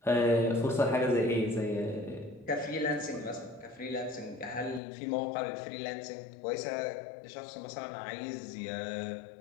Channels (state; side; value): drops out; right; at 4.8 s